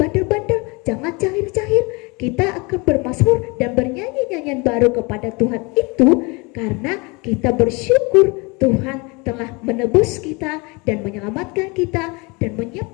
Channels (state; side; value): quieter; right; 27.7 dB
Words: jangan jahil-jahil. Kita akan bermazmur dan bernyanyi nyanyian baru kepada Tuhan itu karena kita bersyukur Tuhan telah menebus kita dan menyelamatkan kita dan